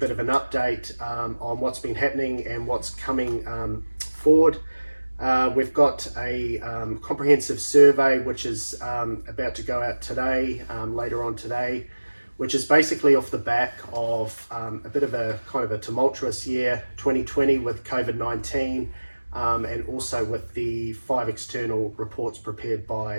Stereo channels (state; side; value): inverted; both; correlation -1.00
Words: of an update on what's been happening and what's coming forward. We've got a comprehensive survey which is about to go out today, later on today, which is basically off the back of a bit of a kind of a tumultuous year, 2020, with COVID-19, and also with the 5 external reports prepared